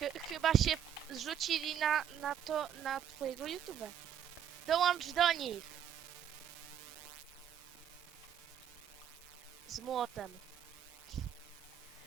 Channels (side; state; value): left; quieter; 9.4 dB